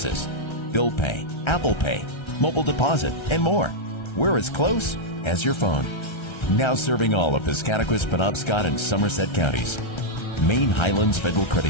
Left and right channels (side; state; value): right; late; 1.3 ms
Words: bill pay, Apple Pay, mobile deposit, and more. We're as close as your phone. Now serving all of Piscataquis, Penobscot, and Somerset counties. Maine Highlands Federal